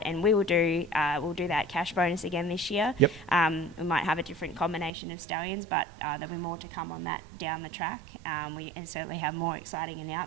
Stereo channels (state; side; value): drops out; left; at 4.9 s